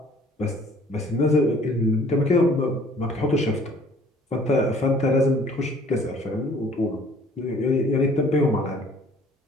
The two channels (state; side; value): normal; both; correlation 0.55